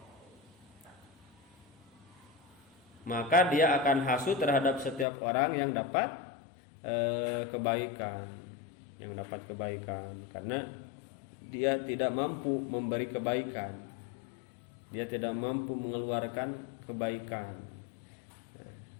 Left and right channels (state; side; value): drops out; right; at 5.1 s